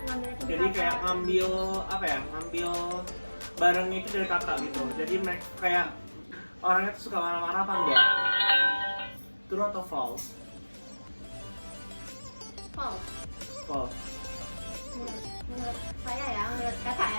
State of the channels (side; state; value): both; inverted; correlation -1.00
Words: jadi kayak ngambil barangnya itu dari kakak gitu. Jadi mereka kayak orangnya tuh suka marah-marah apa enggak? True atau false? False. Menurut saya ya, menurut kakak